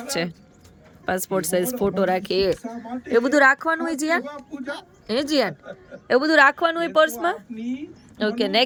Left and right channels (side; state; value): both; identical; correlation 1.00